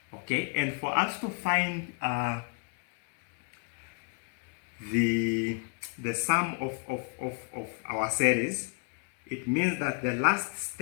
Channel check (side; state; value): right; quieter; 37.5 dB